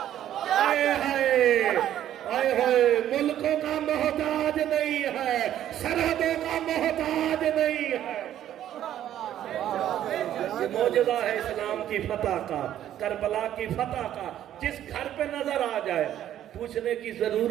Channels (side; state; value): left; quieter; 11.5 dB